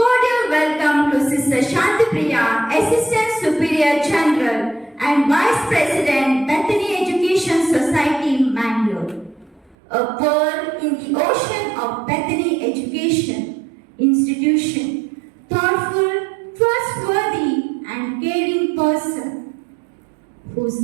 welcome to Sister Shanti Priya, Assistant Superior General and Vice President, Bethany Education Society, Mangalore. A pearl in the ocean of Bethany Education Institution, thoughtful, trustworthy, and caring person,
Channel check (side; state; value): left; drops out; at 9.8 s